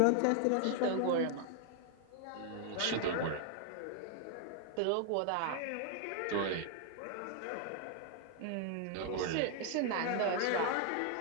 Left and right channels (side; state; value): both; different; correlation 0.00